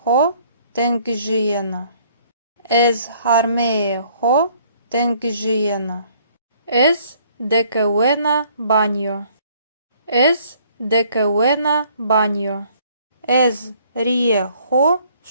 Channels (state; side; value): inverted; both; correlation -0.61